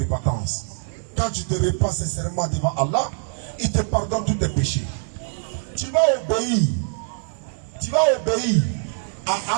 Quand tu te répands sincèrement devant Allah, il te pardonne tous tes péchés. Tu vas obéir à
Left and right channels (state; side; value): silent; left; 63 dB below the other